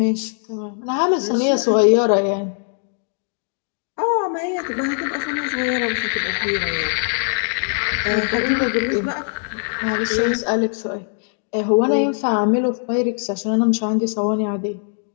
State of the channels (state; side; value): silent; right; 63 dB below the other